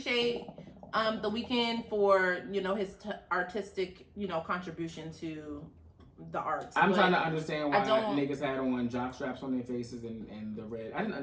The Weeknd for, his artistic, contribution to the arts. I'm trying to understand why niggas had on jock straps on their faces and the red. I didn't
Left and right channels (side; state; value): both; identical; correlation 1.00